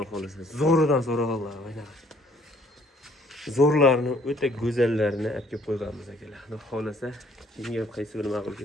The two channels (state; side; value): normal; both; correlation 0.62